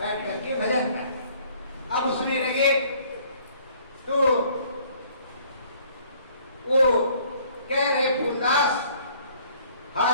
करके भजन करते। अब उसमें लगे तो वो कह रहे फूलदास,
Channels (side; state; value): both; inverted; correlation -0.58